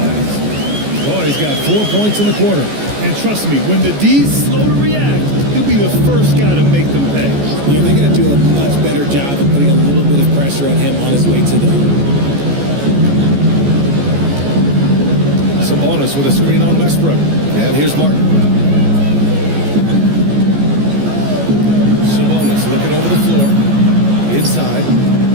Boy, he's got 4 points in the quarter. And trust me, when the D's slow to react, he'll be the first guy to make them pay. Yeah, they're going to do a much better job of putting a little bit of pressure on him on his way to the hoop. Sabonis with a screen on Westbrook. And here's Martin. Sabonis looking over the floor. Inside.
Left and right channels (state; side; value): late; left; 14 ms